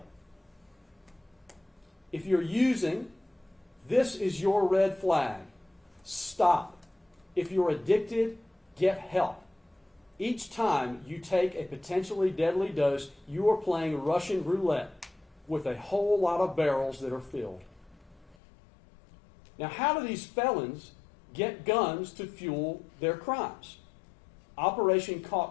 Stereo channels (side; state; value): right; drops out; at 18.4 s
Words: If you're using, this is your red flag. Stop. If you're addicted, get help. Each time you take a potentially deadly dose, you are playing Russian roulette with a whole lot of barrels that are filled. Now, how do these felons get guns to fuel their crimes? Operation